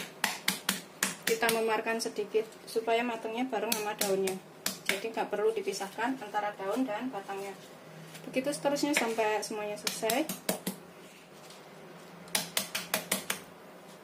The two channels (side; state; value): both; identical; correlation 1.00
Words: Kita memarkan sedikit supaya matangnya bareng sama daunnya, jadi nggak perlu dipisahkan antara daun dan batangnya. Begitu seterusnya sampai semuanya selesai.